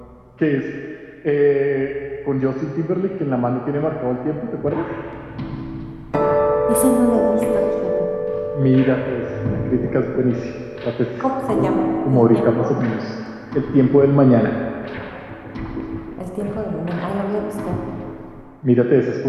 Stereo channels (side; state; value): both; identical; correlation 1.00